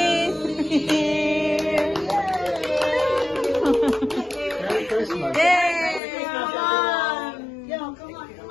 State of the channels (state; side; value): drops out; right; at 6.0 s